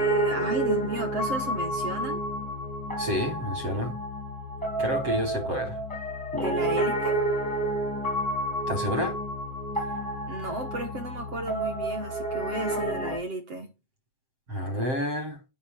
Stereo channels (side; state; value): left; late; 7.7 ms